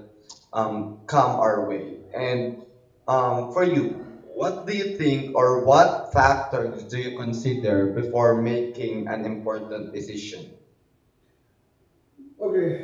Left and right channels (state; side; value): identical; both; correlation 1.00